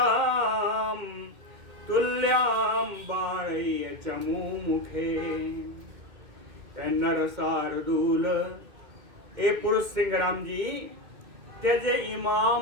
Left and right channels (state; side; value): late; left; 2.1 ms